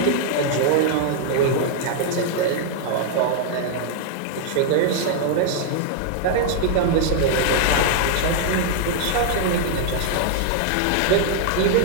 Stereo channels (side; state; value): both; different; correlation 0.00